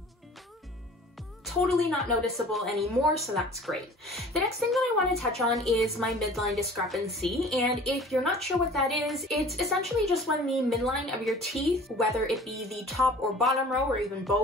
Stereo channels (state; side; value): normal; both; correlation 0.46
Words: Totally not noticeable anymore, so that's great. The next thing that I want to touch on is my midline discrepancy, and if you're not sure what that is, it's essentially just when the midline of your teeth, whether it be the top or bottom row or even